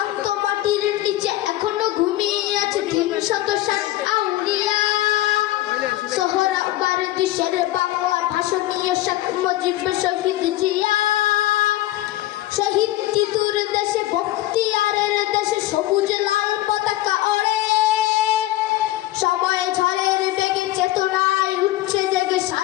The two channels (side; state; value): right; quieter; 15.8 dB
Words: মাটির নিচে এখনো ঘুমিয়ে আছে ৩৬০ আউলিয়া। সোহরাওয়ার দেশের বাংলা ভাষা নিয়ে শেখ মুজিব শহীদ জিয়া। শহীদ তিতুর দেশে বখতিয়ারের দেশে সবুজ লাল পতাকা ওড়ে। সময় ঝড়ের বেগে চেতনায় উঠছে জেগে